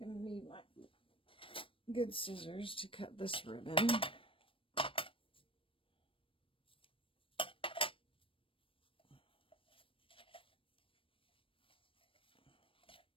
to need my good scissors to cut this ribbon.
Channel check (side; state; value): right; late; 0.25 ms